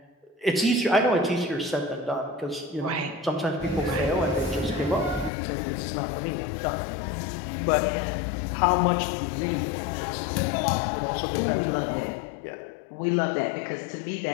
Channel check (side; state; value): right; drops out; at 5.3 s